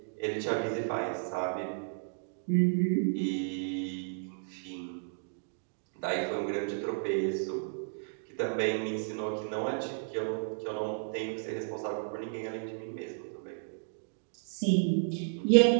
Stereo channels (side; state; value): left; silent; digital silence